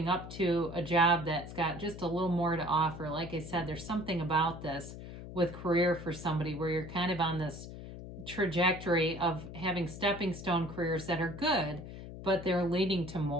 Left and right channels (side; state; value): left; noise; hum, 11 dB below the sound